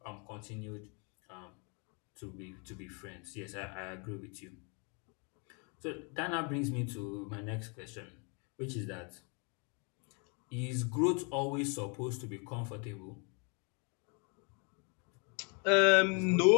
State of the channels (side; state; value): right; quieter; 35.4 dB